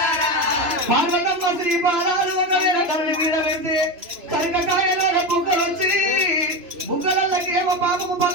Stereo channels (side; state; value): left; late; 2.9 ms